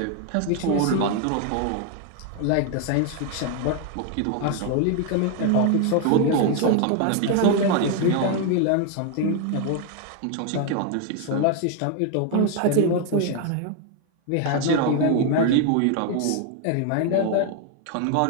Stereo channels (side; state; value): both; different; correlation 0.01